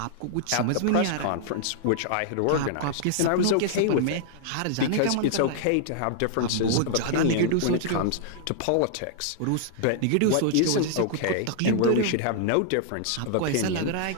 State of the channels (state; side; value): different; both; correlation -0.01